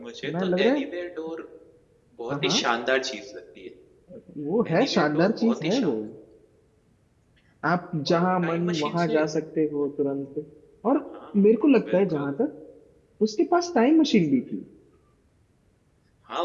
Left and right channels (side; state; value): both; identical; correlation 1.00